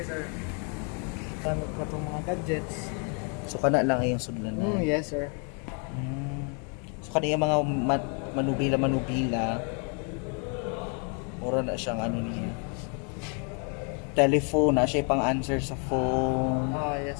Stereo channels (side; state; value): right; quieter; 38.8 dB